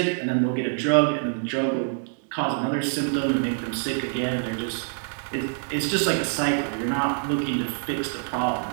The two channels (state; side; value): silent; left; digital silence